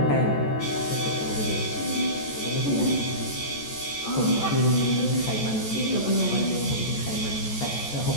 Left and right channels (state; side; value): late; right; 14 ms